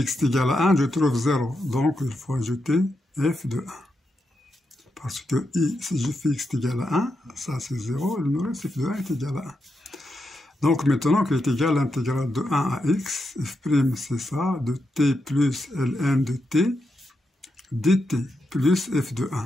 égal à 1, je trouve 0. Donc il faut ajouter f de 1. Parce que si je fais x égal à 1, ça c'est 0, il me reste f de 1 est égal à 1. Donc maintenant qu'il est égal à l'intégrale de 1 à x, f' c'est ça, de t plus ln de t, dt plus f de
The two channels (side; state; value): both; normal; correlation 0.85